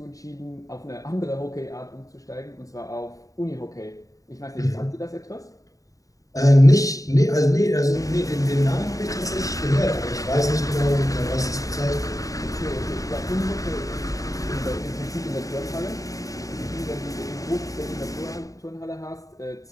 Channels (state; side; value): late; right; 0.16 ms